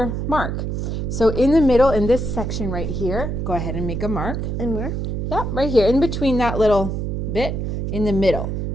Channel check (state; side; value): noise; right; hum, 2 dB below the sound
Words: mark. So in the middle, in this section right here, go ahead and make a mark. And where? Yep, right here, in between that little bit, in the middle.